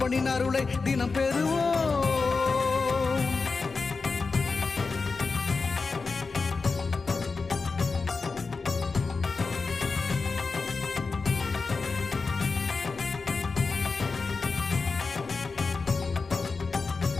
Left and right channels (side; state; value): right; quieter; 4.4 dB